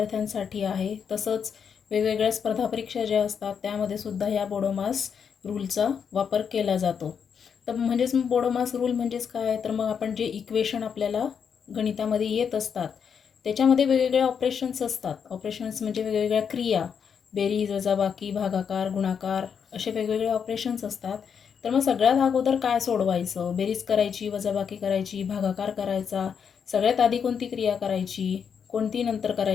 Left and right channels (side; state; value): right; quieter; 7.0 dB